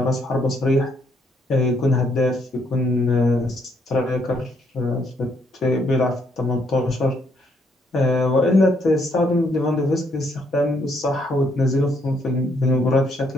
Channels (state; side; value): normal; both; correlation 0.72